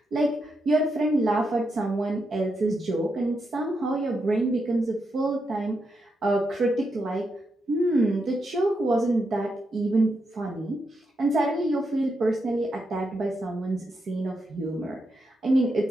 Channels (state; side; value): normal; both; correlation 0.84